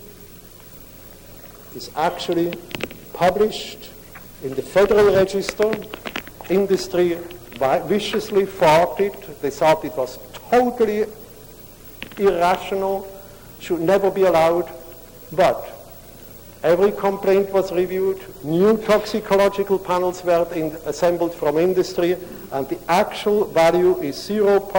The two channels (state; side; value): identical; both; correlation 1.00